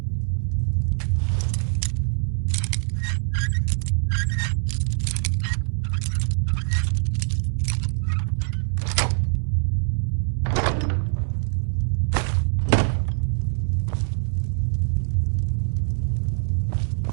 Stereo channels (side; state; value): left; silent; 63 dB below the other